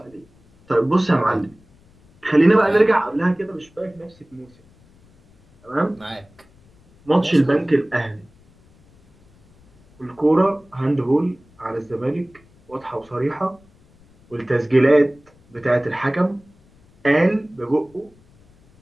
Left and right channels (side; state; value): left; noise; rumble, 30 dB below the sound